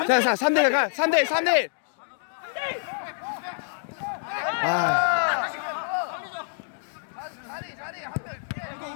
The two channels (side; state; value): right; silent; digital silence